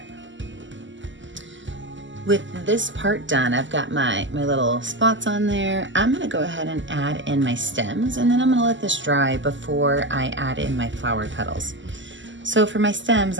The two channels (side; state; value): left; late; 0.54 ms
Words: With this part done, I've got my little spots on there. I'm gonna go ahead and add in my stems, and then I'm gonna let this dry before I add in my flower petals. So for my stems,